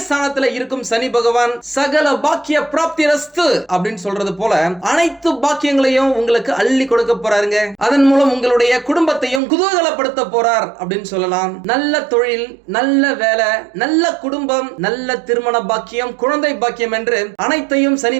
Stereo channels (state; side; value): drops out; left; at 9.4 s